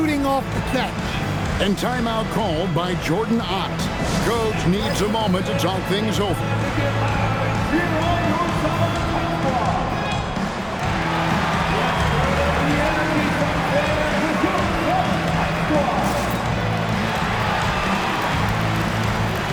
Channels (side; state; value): both; identical; correlation 1.00